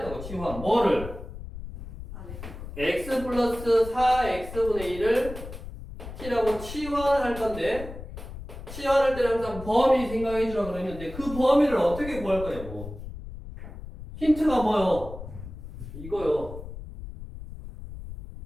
치환 뭐를? x 플러스 4x분의 1을 t라고 치환할 건데 치환할 때는 항상 범위 생각해 주라고 그랬는데 그 범위를 어떻게 구할 거냐고. 힌트가 뭐요? 이거요.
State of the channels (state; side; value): noise; left; rumble, 11 dB below the sound